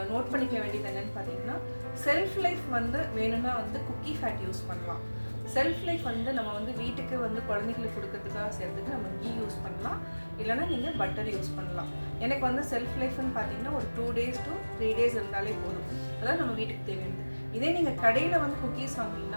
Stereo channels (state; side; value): inverted; both; correlation -1.00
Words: நோட் பண்ணிக்க வேண்டியது என்னென்னு பார்த்தீங்கன்னா, செல்ஃப் லைஃப் வந்து வேணும்னா வந்து குக்கி ஃபேட் யூஸ் பண்ணலாம். செல்ஃப் லைஃப் வந்து நம்ம வந்து வீட்டுக்கு வந்து குழந்தைங்களுக்கு கொடுக்கறதுக்காக செய்கிறதுக்கு நம்ம கீ யூஸ் பண்ணலாம், இல்லைனா நீங்கள் பட்டர் யூஸ் பண்ணலாம். எனக்கு வந்து செல்ஃப் லைஃப்னு பார்த்தீங்கன்னா ஒரு 2 days to 3 days இருந்தாலே போதும். அதாவது நம்ம வீட்டுக்கு தேவையானது. இதே நீங்கள் கடையில் வந்து குக்கீஸ்